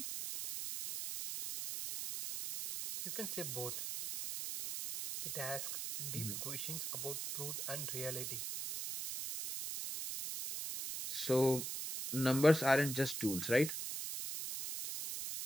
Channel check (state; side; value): noise; right; hiss, 4 dB below the sound